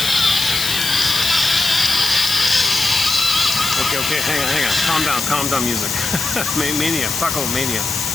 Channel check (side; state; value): left; noise; hiss, 3 dB below the sound